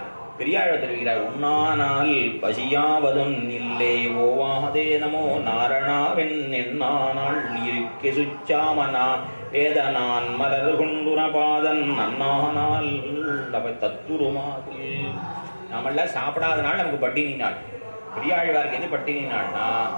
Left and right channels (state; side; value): inverted; both; correlation -1.00